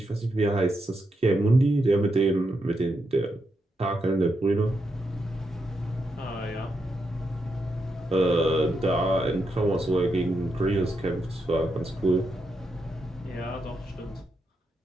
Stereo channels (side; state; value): both; normal; correlation 0.83